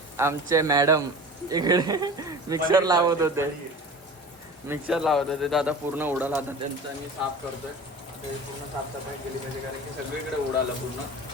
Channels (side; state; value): both; normal; correlation 0.37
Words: आमचे मॅडम इकडे मिक्सर लावत होते तर आता पूर्ण उडाला. आता त्यांचं मी साफ करतोय. आता हे पूर्ण साफसफाई केली पाहिजे कारण की सगळीकडे उडालं पूर्ण.